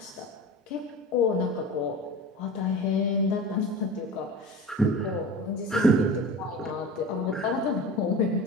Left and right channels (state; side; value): normal; both; correlation 0.34